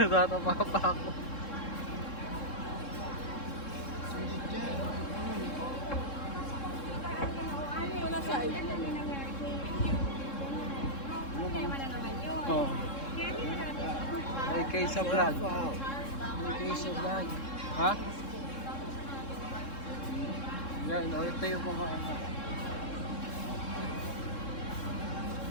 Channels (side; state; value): right; late; 3.7 ms